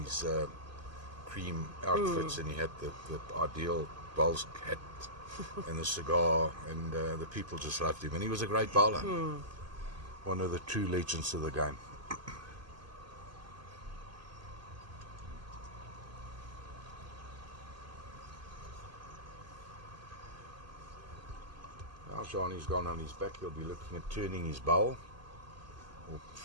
his cream outfits, and he had the ideal bowls hat and the cigar, and the people just loved him. And he was a great bowler. One of the true legends of the game. Now Gianni's gone on his back. He'll be looking at turning his bowl or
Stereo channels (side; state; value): left; late; 2.5 ms